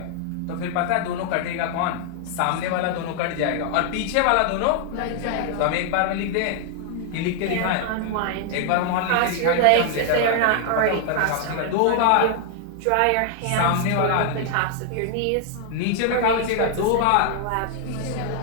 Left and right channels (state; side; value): different; both; correlation 0.00